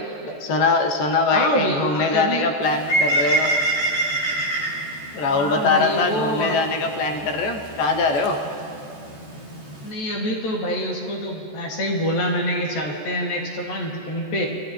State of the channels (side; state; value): right; late; 14 ms